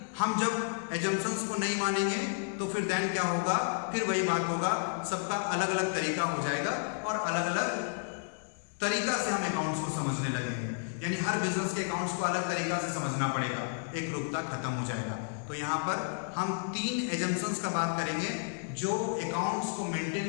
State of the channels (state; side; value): silent; right; digital silence